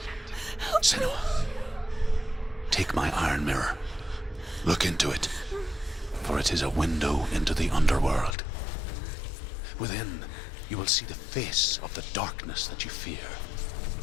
Senua, take my iron mirror. Look into it, for it is a window into the underworld. Within, you will see the face of the darkness that you fear.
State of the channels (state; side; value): drops out; right; at 8.3 s